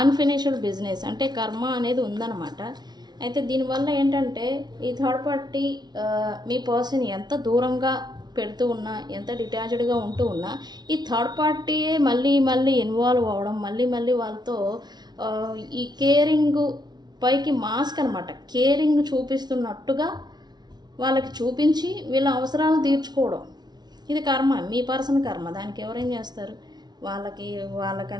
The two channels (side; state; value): left; late; 0.20 ms